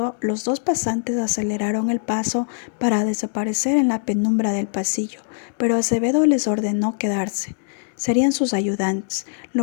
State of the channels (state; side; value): silent; right; digital silence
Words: los dos pasantes aceleraron el paso para desaparecer en la penumbra del pasillo, pero Acevedo les ordenó quedarse. Serían sus ayudantes.